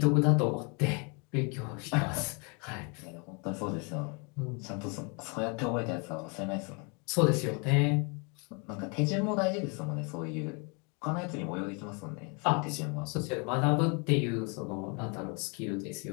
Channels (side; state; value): right; quieter; 33.8 dB